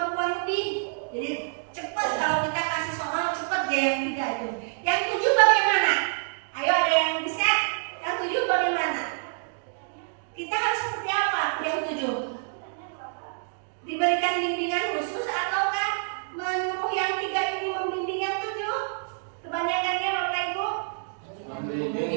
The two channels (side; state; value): left; silent; digital silence